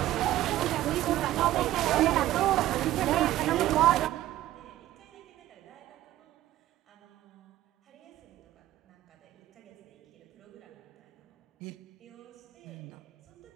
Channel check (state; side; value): quieter; left; 14.3 dB